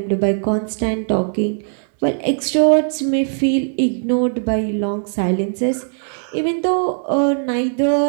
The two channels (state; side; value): silent; left; digital silence